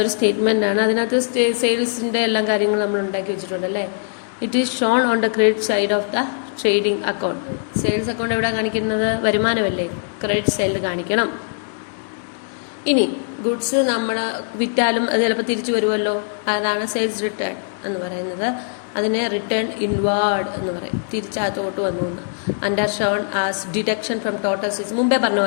സ്റ്റേറ്റ്മെൻ്റ് ആണ്. അതിനകത്ത് സെയിൽസിൻ്റെ എല്ലാ കാര്യങ്ങളും നമ്മൾ ഉണ്ടാക്കി വെച്ചിട്ടുണ്ടല്ലേ. It is shown on the credit side of the trading account. Sales account എവിടെ കാണിക്കുന്നത്, വരുമാനമല്ലേ, ക്രെഡിറ്റ് സൈഡിൽ കാണിക്കണം. ഇനി ഗുഡ്സ് നമ്മൾ വിറ്റാലും അത് ചിലപ്പോൾ തിരിച്ചു വരുമല്ലോ, അതാണ് സെയിൽസ് റിട്ടേൺ എന്ന് പറയുന്നത്. അതിനെ റിട്ടേൺ ഇൻവാർഡ് എന്ന് പറയും, തിരിച്ചകത്തോട്ട് വന്നു. Under shown as deduction from total sales. മുമ്പേ പറഞ്ഞ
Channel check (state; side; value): silent; right; digital silence